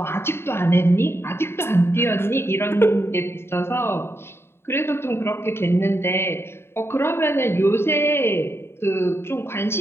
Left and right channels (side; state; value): right; late; 0.12 ms